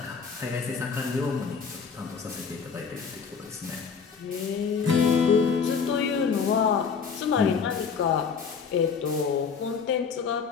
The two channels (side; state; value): right; quieter; 5.9 dB